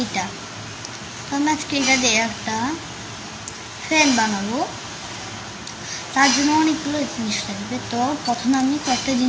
এটা তো আমি আজকে এটা দিয়ে একটা ফ্যান বানাবো। তার জন্য অনেকগুলো জিনিস লাগবে। তো প্রথমে আমি কয়েকটা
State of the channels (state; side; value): identical; both; correlation 1.00